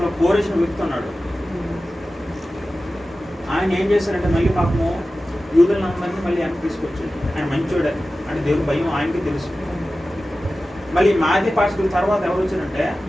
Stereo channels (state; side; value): normal; both; correlation 0.95